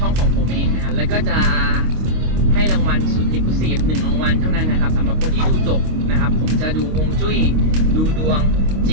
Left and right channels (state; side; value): late; left; 25 ms